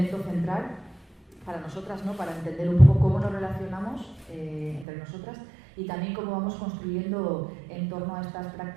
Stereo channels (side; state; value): left; drops out; at 4.9 s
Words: central para nosotras, ¿no? Para entender un poco cómo nos relacionamos entre nosotras y también cómo vamos construyendo en torno a estas